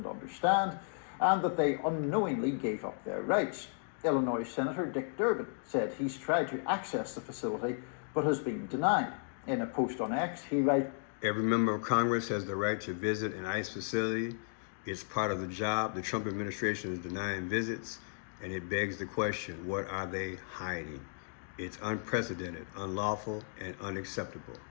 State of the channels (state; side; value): silent; right; digital silence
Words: understand and that they unknowingly gave up their rights. Illinois Senator Dick Durbin said he's tried to access the facility but has been denied. In a post on X, he writes, Every member of Congress has the right to visit an ICE facility. It's part of the job. The Trump administration is denying visits, and it begs the question, what are they hiding? It's unprecedented, unlawful, and unacceptable.